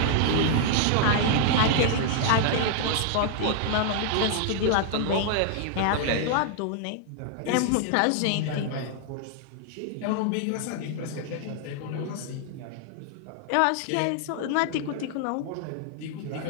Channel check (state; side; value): different; both; correlation 0.00